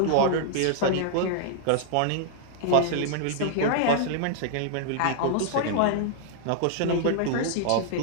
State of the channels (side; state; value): both; different; correlation -0.01